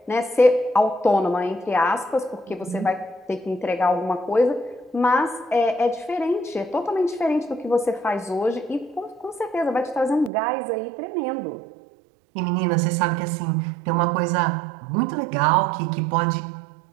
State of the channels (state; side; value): drops out; left; at 10.3 s